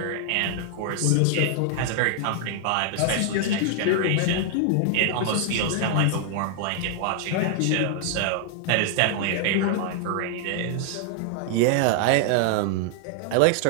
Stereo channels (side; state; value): both; different; correlation 0.00